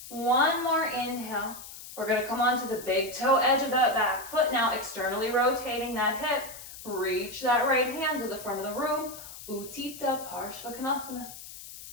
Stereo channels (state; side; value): noise; left; hiss, 14 dB below the sound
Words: One more inhale. We're going to come onto the big toe edge of that back foot now, externally rotating that hip. Reach that right hand to the front of the room. Utthita Parshvakonasana.